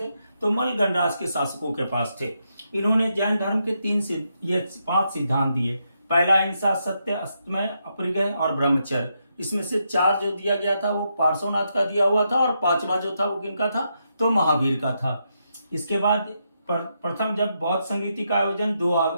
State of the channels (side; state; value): both; inverted; correlation -0.82